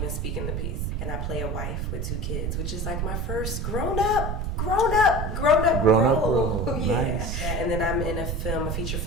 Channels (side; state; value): right; noise; rumble, 2 dB below the sound